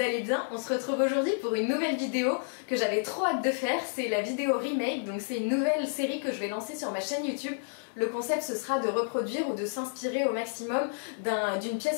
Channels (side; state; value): right; silent; digital silence